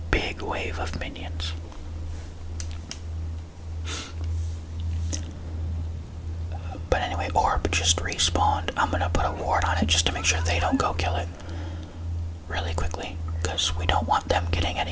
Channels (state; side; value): identical; both; correlation 1.00